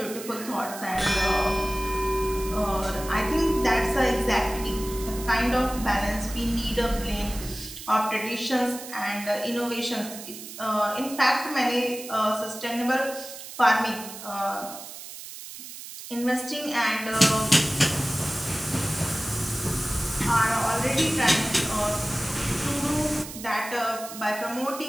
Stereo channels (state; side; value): noise; right; hiss, 12 dB below the sound